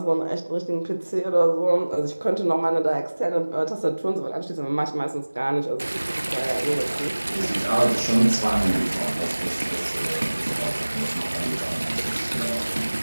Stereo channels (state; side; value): inverted; both; correlation -1.00